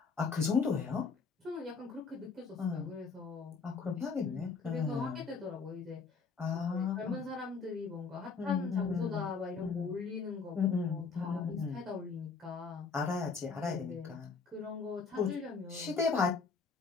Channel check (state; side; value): quieter; right; 4.9 dB